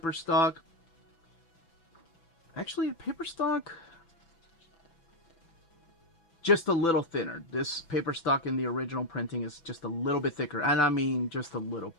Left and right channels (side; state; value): right; late; 6.0 ms